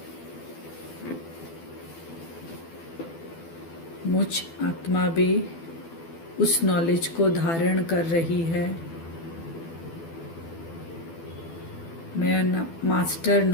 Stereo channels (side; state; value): right; late; 12 ms